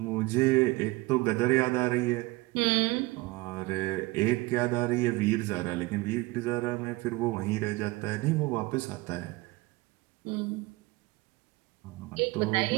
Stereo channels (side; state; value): left; quieter; 22.1 dB